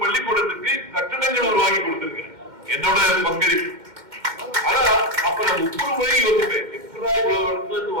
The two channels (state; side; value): late; left; 2.1 ms